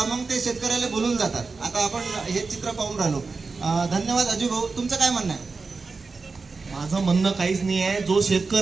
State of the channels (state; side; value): quieter; left; 4.3 dB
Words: मग ते शेतकऱ्याला बोलून जातात. आता आपण हे चित्र पाहून राहिलो. धन्यवाद अजय भाऊ. तुमचं काय म्हणणं आहे? माझं म्हणणं काहीच नाही आहे. जो